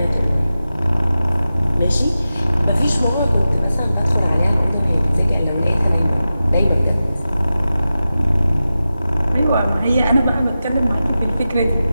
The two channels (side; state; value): both; inverted; correlation -0.93